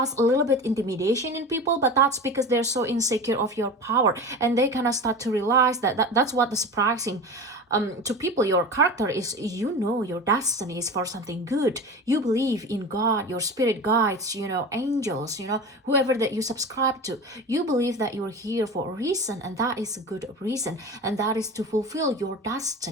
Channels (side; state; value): both; normal; correlation 0.31